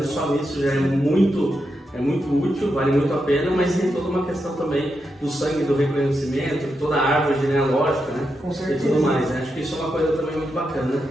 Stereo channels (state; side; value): normal; both; correlation 0.85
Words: só nisso já é muito útil, vale muito a pena, mas tem toda uma questão também do sangue, do reconhecimento, toda a árvore genealógica, né? Com certeza. E tudo mais, né? Acho que isso é uma coisa também muito bacana,